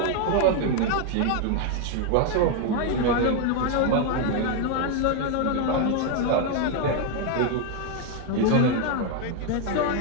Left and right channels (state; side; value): different; both; correlation 0.01